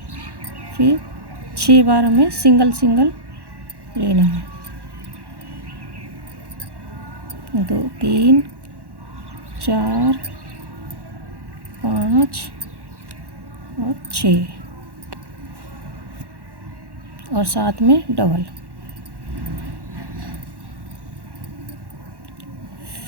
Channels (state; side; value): late; left; 1.1 ms